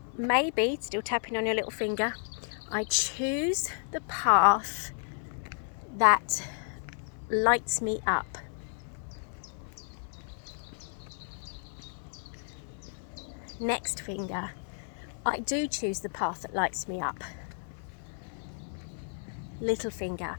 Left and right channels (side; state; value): right; silent; digital silence